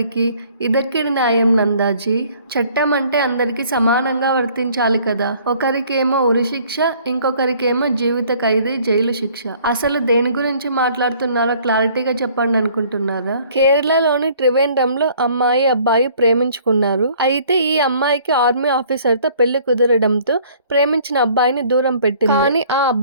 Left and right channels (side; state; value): both; inverted; correlation -0.57